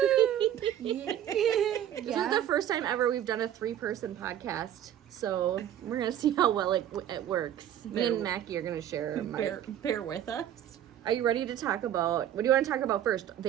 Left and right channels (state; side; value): quieter; left; 10.9 dB